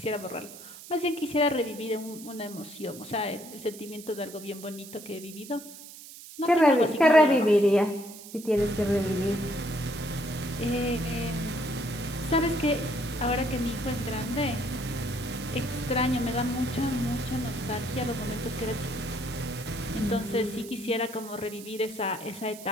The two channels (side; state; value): right; noise; hiss, 16 dB below the sound